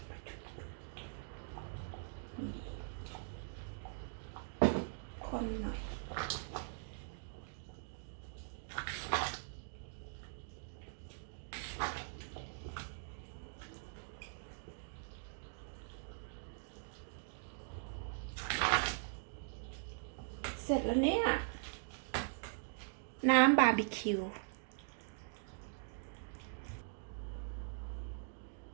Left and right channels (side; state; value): left; silent; digital silence